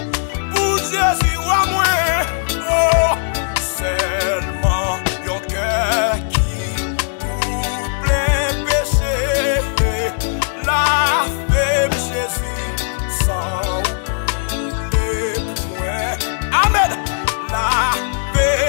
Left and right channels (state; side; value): silent; right; digital silence